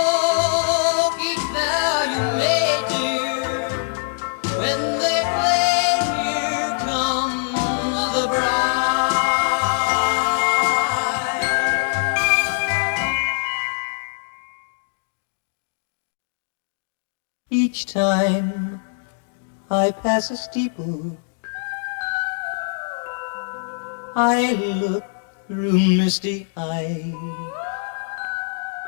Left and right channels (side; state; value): right; silent; digital silence